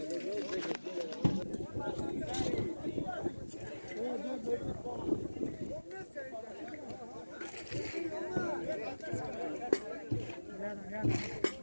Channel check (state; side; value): inverted; both; correlation -1.00